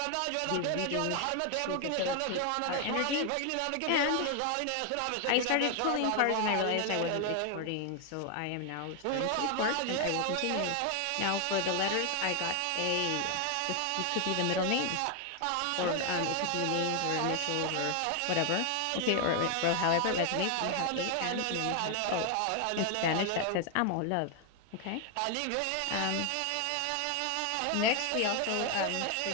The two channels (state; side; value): different; both; correlation 0.01